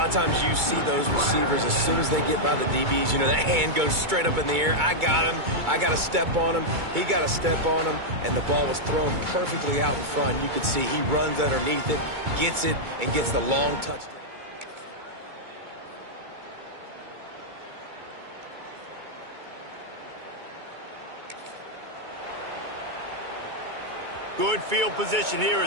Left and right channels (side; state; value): left; late; 2.2 ms